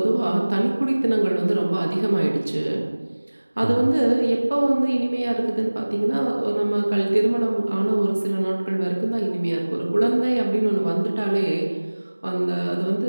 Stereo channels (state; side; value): inverted; both; correlation -1.00